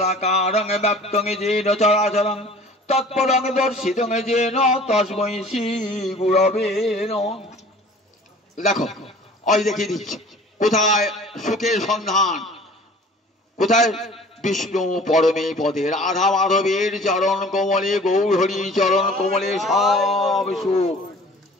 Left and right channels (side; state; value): both; normal; correlation 0.47